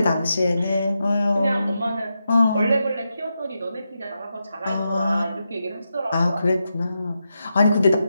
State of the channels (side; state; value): both; inverted; correlation -0.87